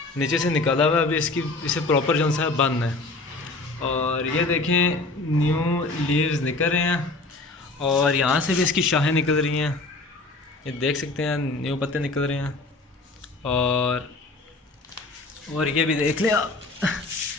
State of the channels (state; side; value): quieter; right; 3.3 dB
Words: नीचे से निकाला हुआ है। अभी इसे प्रॉपर जो सा है बंद है। और ये देखें न्यू लीव्स निकल रहे हैं और यहाँ से भी इसकी शाखें निकल रही हैं, ये देख सकते हैं न्यू पत्ते निकल रहे हैं। और ये भी देख लें आप